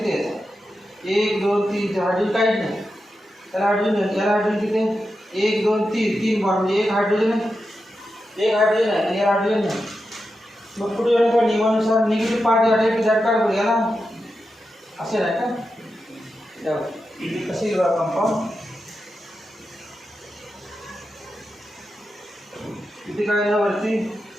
आहे? 1 2 3. हायड्रोजन काहीच नाही त्याला हायड्रोजन. याला हायड्रोजन किती आहे? 1 2 3. 3 बॉन्ड म्हणजे एक हायड्रोजन आहे, एक हायड्रोजन आहे आणि याला हायड्रोजन नाही. मग पुढे येऊन का नियमानुसार निगेटिव्ह पार्ट या टाईप झट काढ बघूया ना, असे नाही का? कसे कंपाऊंड इथे काय ना वरती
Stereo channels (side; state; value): both; normal; correlation 0.89